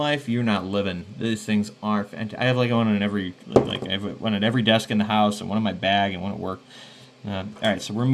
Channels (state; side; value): identical; both; correlation 1.00